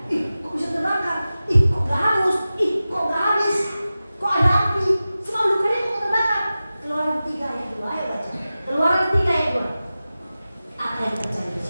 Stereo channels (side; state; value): both; inverted; correlation -0.95